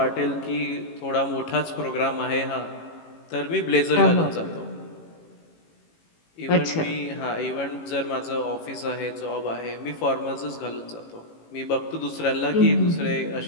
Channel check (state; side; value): late; right; 18 ms